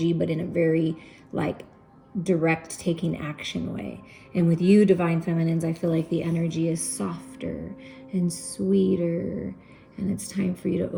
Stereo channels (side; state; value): both; identical; correlation 1.00